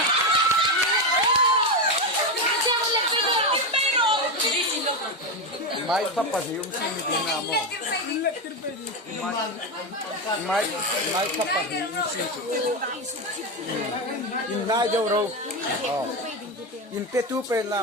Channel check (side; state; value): both; normal; correlation 0.12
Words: Mai kapasium sini na mo. Mai kapasium sini. Inai jauh ro. Oh. In petu pe